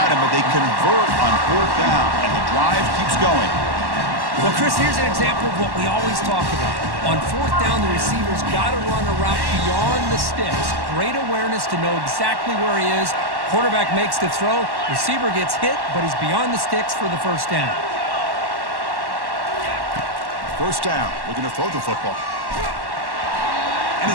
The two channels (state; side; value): late; left; 1.1 ms